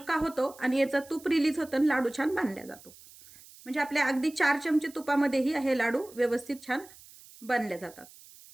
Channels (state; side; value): noise; right; hiss, 22 dB below the sound